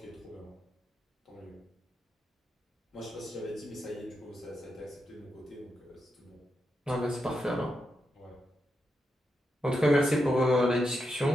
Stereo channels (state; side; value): normal; both; correlation 0.85